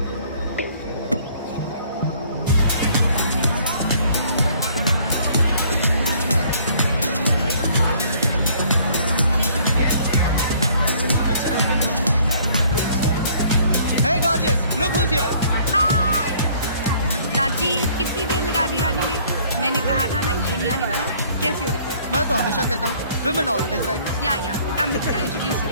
Hey gorgeous, look who's here. हाय राजीव, कितनी देर लगा दी आने में? मैंने कहा था ना ये नहीं आने वाला। कैसी हो विक्रम? मैं तो हमेशा कहता हूँ women always right. या come with me, I'll introduce you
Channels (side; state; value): both; inverted; correlation -0.58